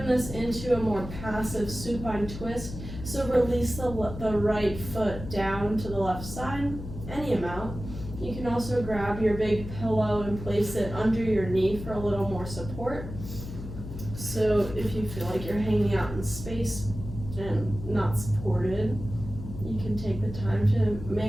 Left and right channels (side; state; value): left; noise; hum, 10 dB below the sound